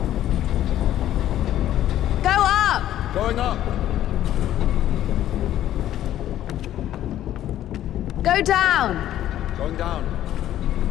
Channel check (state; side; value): quieter; right; 12.3 dB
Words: Go up! Going up! Go down! Going down.